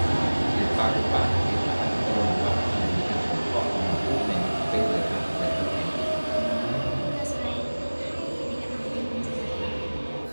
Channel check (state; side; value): inverted; both; correlation -1.00